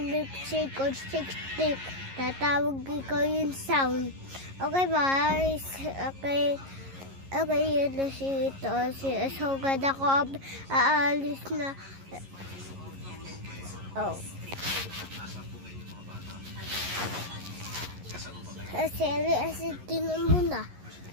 milkshake or 60. Tatawag ko yung sound. Okay, guys. Okay, yun na si ito. So, ganda ko. Aalis na. Oh. Kasi tinan mo na.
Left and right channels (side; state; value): left; late; 11 ms